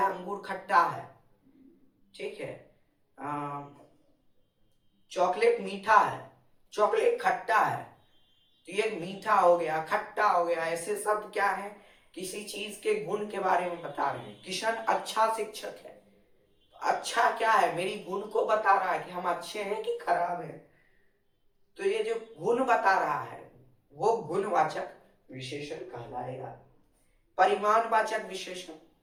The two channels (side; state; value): both; identical; correlation 1.00